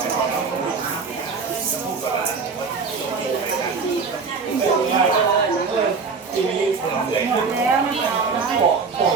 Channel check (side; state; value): left; quieter; 5.0 dB